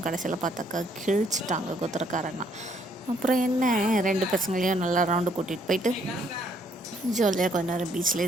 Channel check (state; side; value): normal; both; correlation 0.68